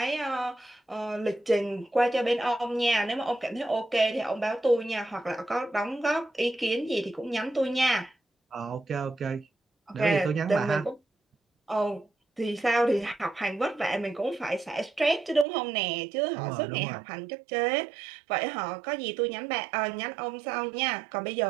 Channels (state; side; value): drops out; left; at 15.5 s